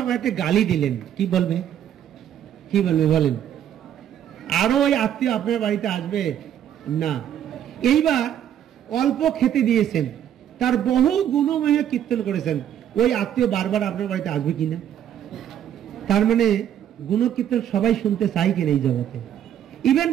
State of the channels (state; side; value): quieter; left; 10.2 dB